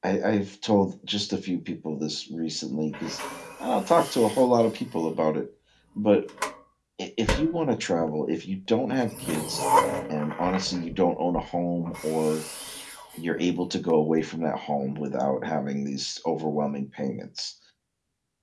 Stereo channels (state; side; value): identical; both; correlation 1.00